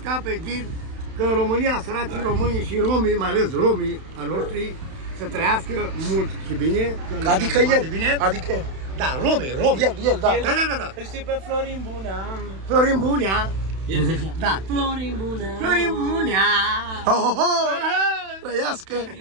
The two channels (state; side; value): late; left; 31 ms